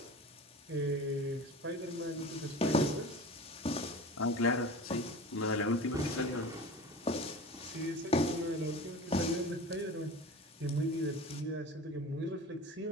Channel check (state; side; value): normal; both; correlation 0.35